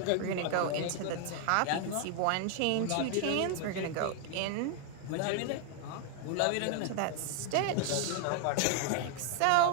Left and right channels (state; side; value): different; both; correlation 0.00